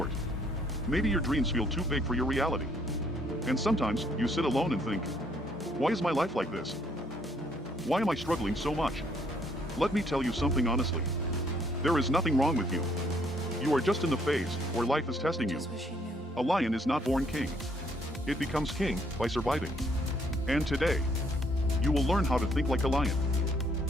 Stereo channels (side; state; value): both; normal; correlation 0.67